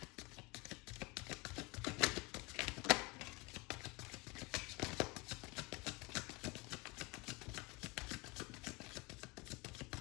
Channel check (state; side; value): quieter; right; 26.0 dB